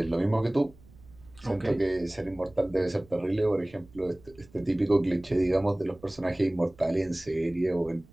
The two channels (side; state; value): right; noise; rumble, 25 dB below the sound